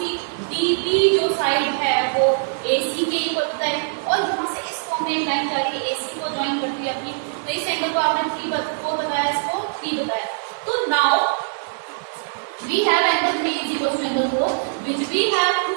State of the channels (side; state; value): left; silent; digital silence